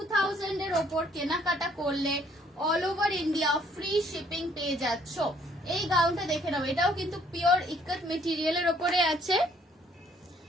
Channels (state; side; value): normal; both; correlation 0.63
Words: এর ওপর কেনাকাটা করলে all over India free shipping পেয়ে যাচ্ছ। এই গাউনটা দেখে নাও, এটাও কিন্তু পিওর ইক্কত মেটেরিয়ালের ওপরে আছে।